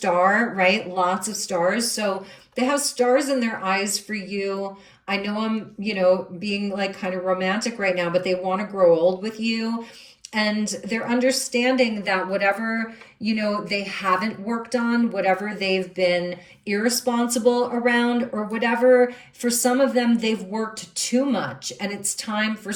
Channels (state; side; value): identical; both; correlation 1.00